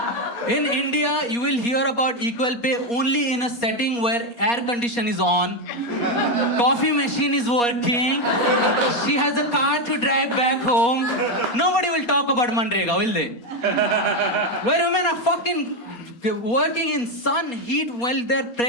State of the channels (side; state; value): right; late; 4.2 ms